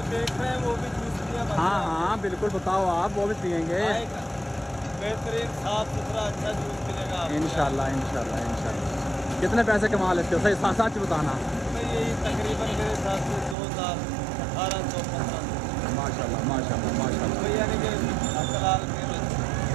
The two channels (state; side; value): drops out; left; at 13.6 s